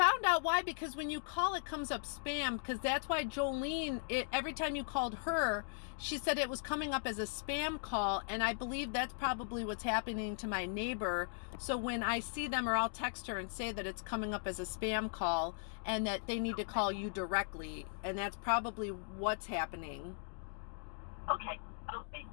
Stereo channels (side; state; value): right; silent; digital silence